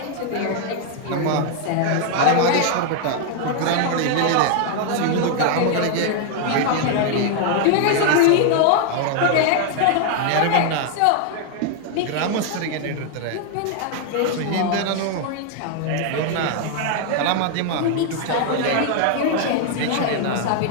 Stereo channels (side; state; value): both; different; correlation 0.00